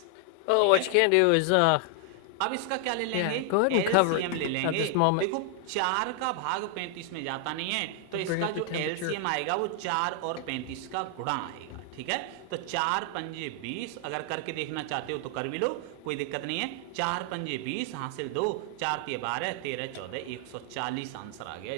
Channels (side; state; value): both; different; correlation 0.00